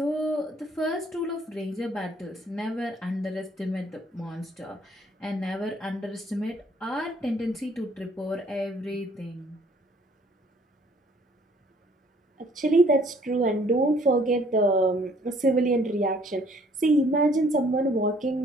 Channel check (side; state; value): both; normal; correlation 0.60